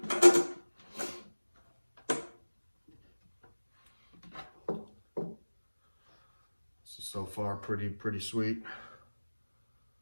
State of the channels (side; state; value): both; inverted; correlation -1.00